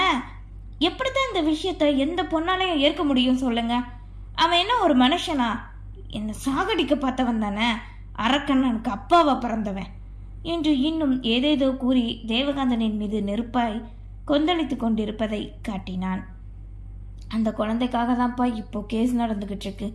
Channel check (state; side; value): identical; both; correlation 1.00